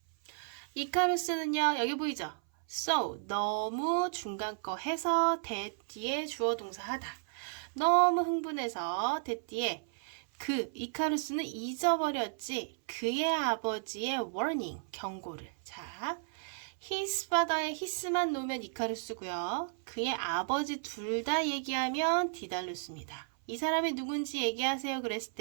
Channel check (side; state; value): left; silent; 55 dB below the other